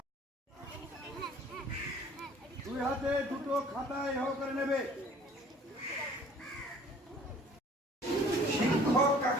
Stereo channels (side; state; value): both; normal; correlation 0.52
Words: দুই হাতে দুটো খাতায় এ করে নেবে। শিক্ষক